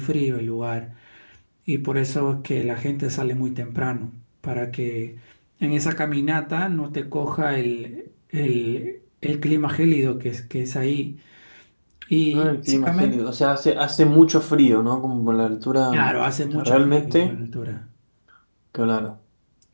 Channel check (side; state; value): both; inverted; correlation -1.00